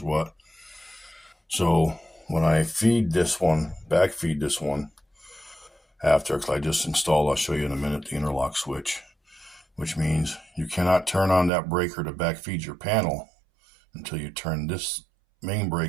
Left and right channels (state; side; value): drops out; left; at 11.5 s